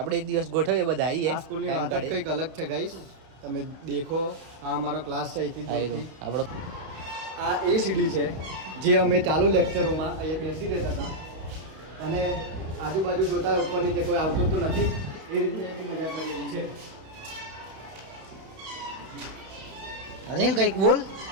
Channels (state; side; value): late; left; 31 ms